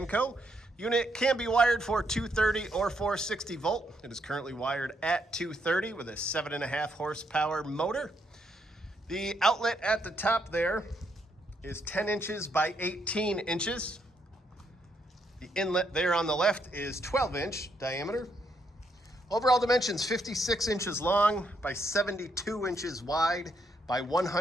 Unit can be wired for 230 or 460 volt. It is currently wired at 230 with a 7.5 horsepower motor. The outlet at the top there is 10 inches by 18 inches. The inlet there on the left is 12-inch diameter. Overall dimensions 56 inches long by 72 inches wide by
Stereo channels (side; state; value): both; normal; correlation 0.76